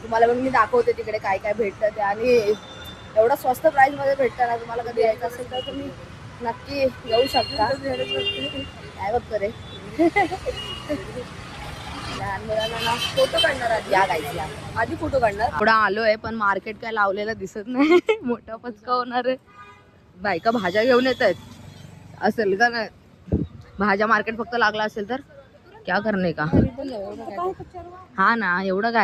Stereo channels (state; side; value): identical; both; correlation 1.00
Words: तुम्हाला पण मी दाखवते तिकडे काय काय भेटतं ते. आणि एवढं स्वस्त प्राईसमध्ये भेटतं ना, तुम्हाला कधी यायचं असेल तर तुम्ही नक्की येऊ शकता. काय बघतो रे, लहान मुलांना फोटो काढणार आधी. या गाईज या, आधी फोटो काढणार. थोडा आलोय पण मार्केट काय लावलेलं दिसत नाही. मोठा पचका होणार आहे. बायका भाज्या घेऊन येत आहेत असेल का नाही, भाज्या मार्केट फक्त लागला असेल तर क्या करणे का. हा ना, एवढं